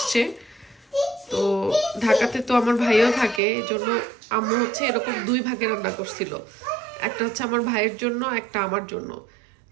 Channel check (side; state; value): left; drops out; at 3.4 s